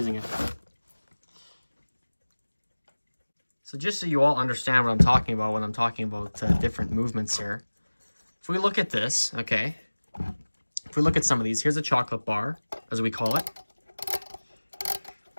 it. So just so you all understand what I'm talking about when I'm talking about different movements here. If we look at this, okay... If we look at some of these, here's a chocolate bar, as we call it.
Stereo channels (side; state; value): both; inverted; correlation -1.00